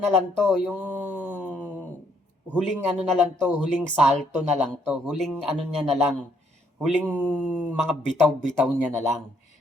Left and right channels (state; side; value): normal; both; correlation 0.69